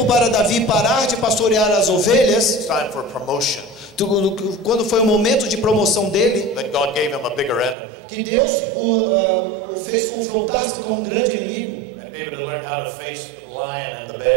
para Davi parar de pastorear as ovelhas. It's time for promotion. Quando foi o momento de promoção dele, Then God gave him a bigger enemy. que Deus o fez confrontar-se com um grande inimigo. And David had learned how to face the lion and the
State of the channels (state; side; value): drops out; left; at 7.8 s